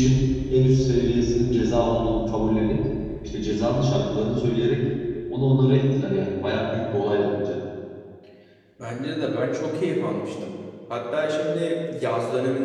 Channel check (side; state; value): both; identical; correlation 1.00